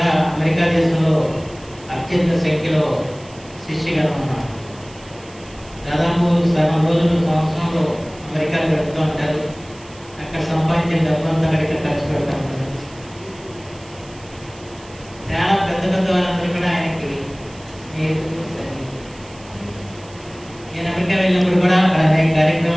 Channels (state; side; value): noise; right; hiss, 23 dB below the sound